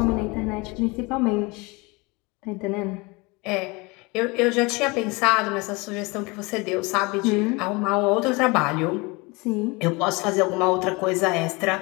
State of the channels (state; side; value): quieter; right; 26.0 dB